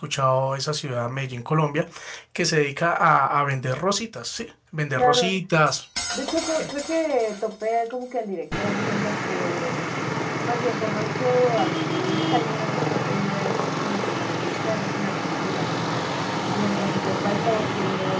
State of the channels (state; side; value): identical; both; correlation 1.00